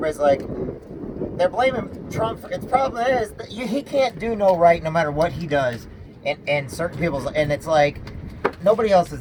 like, they're blaming Trump. The problem is that he can't do no right no matter what he does. And certain people's, and it's like, nobody else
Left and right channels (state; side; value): identical; both; correlation 1.00